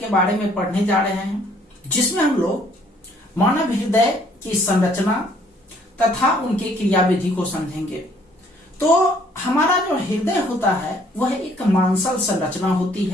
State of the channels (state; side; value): normal; both; correlation 0.62